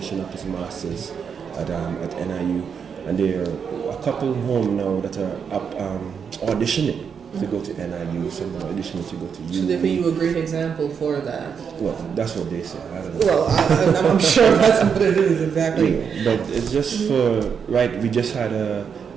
up his masters at NIU. And there are a couple home now that are auditioning to go to NIU, some are auditioning to go to UU. So therefore you a great example for that. Well, that's what they say. I don't know. Well, I'm sure that's what it is, exactly. Yeah, but it's just for, we just had a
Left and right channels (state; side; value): quieter; left; 6.8 dB